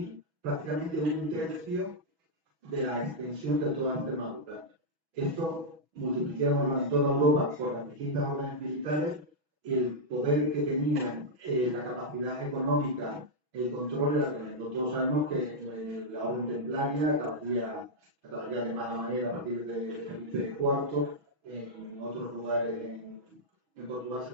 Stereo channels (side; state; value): left; late; 6.2 ms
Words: prácticamente un tercio de la extensión de toda Extremadura. Esto, multiplicámoslo en toda Europa por las distintas órdenes militares, el poder que tenían, la capacidad económica, el control era tremendo. Todos sabemos que la orden templaria, la caballería de mala manera a partir de Felipe IV, en otros lugares en Portugal